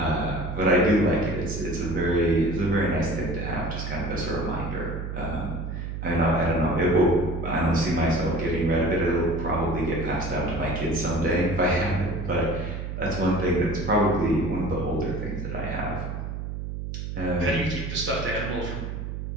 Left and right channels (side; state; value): right; noise; hum, 5 dB below the sound